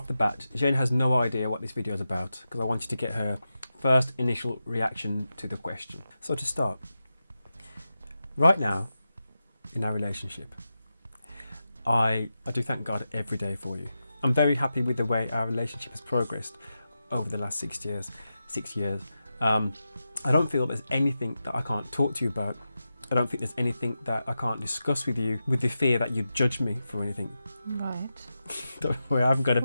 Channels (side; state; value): both; inverted; correlation -0.90